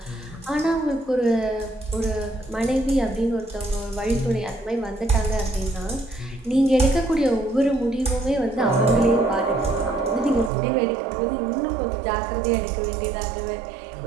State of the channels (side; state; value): left; drops out; at 10.5 s